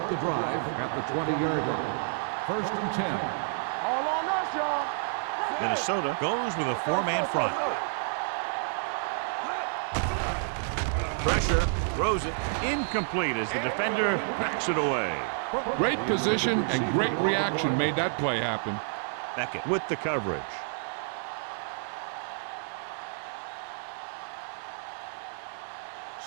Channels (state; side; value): silent; left; digital silence